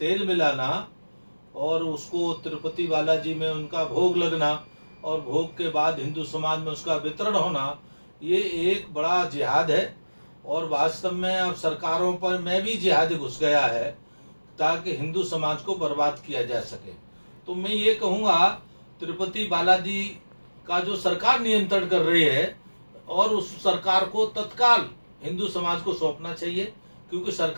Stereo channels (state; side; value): inverted; both; correlation -1.00